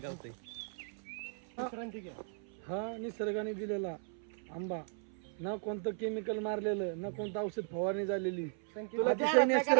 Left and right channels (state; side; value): silent; left; 53 dB below the other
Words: गावतंय. हा निसर्गाने दिलेला आंबा. न कोणतं केमिकल मारलेलं, न कोणतं औषध फवारणी झालेली. अतिशय